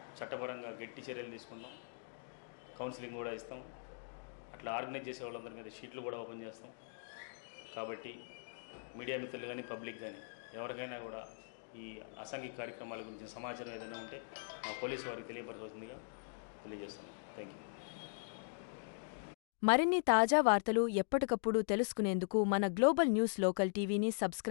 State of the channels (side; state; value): right; silent; digital silence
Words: చట్టపరంగా గట్టి చర్యలు తీసుకుంటాం. కౌన్సిలింగ్ కూడా ఇస్తాం. అట్లా ఆర్గనైజ్ చేసే వాళ్ళందరి మీద షీట్లు కూడా ఓపెన్ చేస్తాం. కాబట్టి మీడియా మిత్రులు కానీ, పబ్లిక్ కానీ ఎవరికైనా కూడా ఈ అసాంఘిక కార్యక్రమాల గురించి సమాచారం ఏదైనా ఉంటే మా పోలీసు వారికి తెలియపరచవలసిందిగా తెలియజేస్తాను. Thank you. మరిన్ని తాజా వార్తలు ఎప్పటికప్పుడు తెలుసుకునేందుకు మన గ్లోబల్ న్యూస్ లోకల్ టీవీని